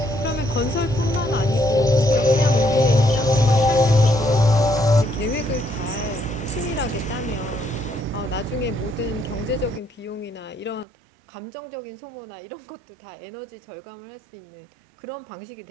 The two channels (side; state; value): left; drops out; at 10.9 s